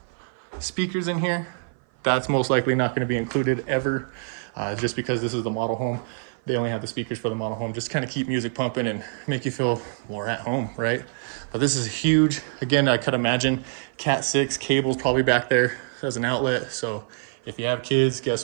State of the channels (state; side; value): silent; left; 56 dB below the other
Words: speakers in here. That's most likely not gonna be included ever, just because this is the model home. They only have the speakers for the model home, just kind of keep music pumping and make you feel more at home, right? But this is huge. Again, I could imagine Cat 6 cables probably back there as an outlet. So if you have kids, guess